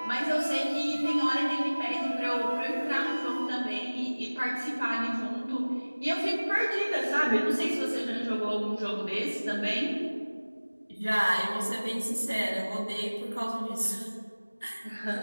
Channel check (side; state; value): both; inverted; correlation -1.00